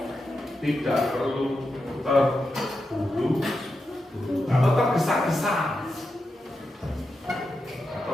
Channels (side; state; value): both; normal; correlation 0.88